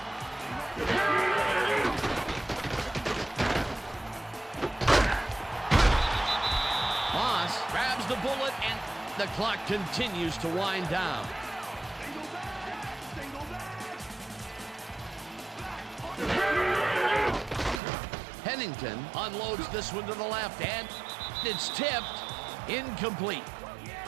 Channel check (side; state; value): left; drops out; at 17.8 s